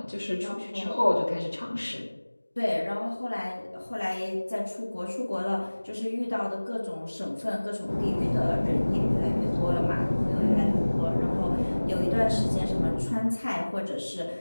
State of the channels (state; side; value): inverted; both; correlation -1.00